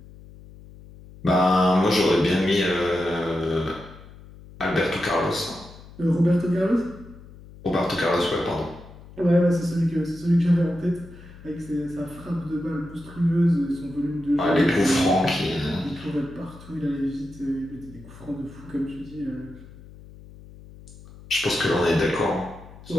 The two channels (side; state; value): left; noise; hum, 19 dB below the sound